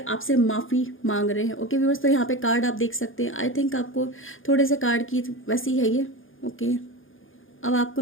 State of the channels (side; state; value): right; late; 0.58 ms